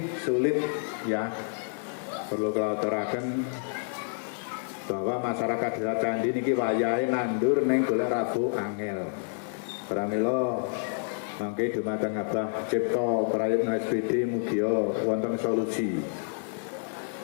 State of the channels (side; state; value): right; silent; digital silence